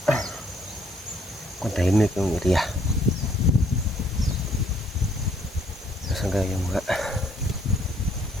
Kung tahimik yung area. Nasaan ka yung mga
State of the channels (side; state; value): both; normal; correlation 0.66